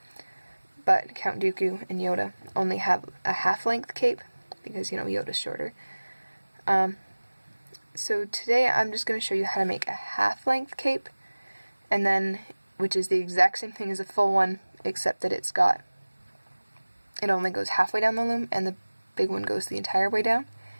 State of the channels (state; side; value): inverted; both; correlation -1.00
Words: but Count Dooku and Yoda only have a half-length cape because, you know, Yoda's shorter. So today I'm just going to show you how to make a half-length cape, and then, which is the exact same thing as a full one, except that it only goes halfway down the loom, and the big one goes the entire way down.